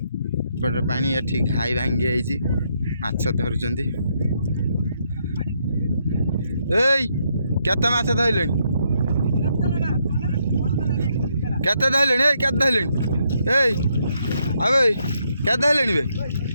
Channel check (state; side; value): inverted; both; correlation -0.76